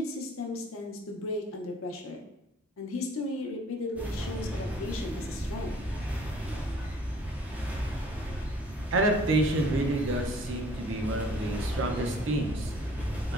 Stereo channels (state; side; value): normal; both; correlation 0.54